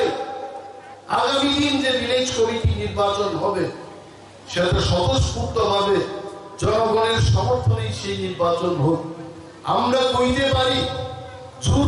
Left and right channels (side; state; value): both; identical; correlation 1.00